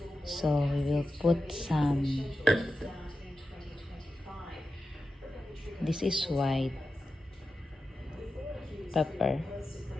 So we will put some. This is white pepper.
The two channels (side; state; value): both; normal; correlation 0.91